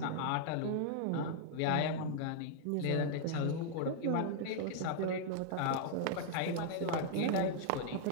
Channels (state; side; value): different; both; correlation -0.01